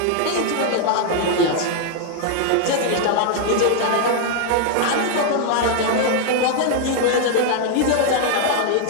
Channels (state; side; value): different; both; correlation 0.00